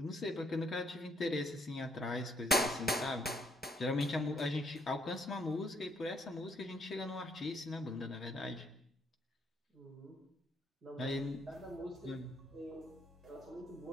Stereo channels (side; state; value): both; normal; correlation 0.70